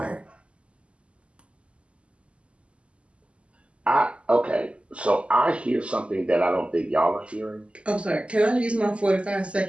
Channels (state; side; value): late; left; 0.057 ms